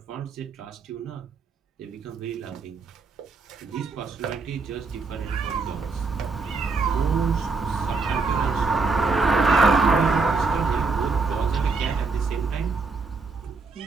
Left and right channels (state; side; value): quieter; left; 4.3 dB